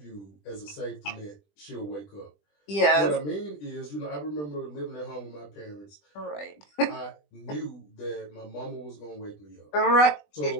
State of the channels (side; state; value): right; late; 20 ms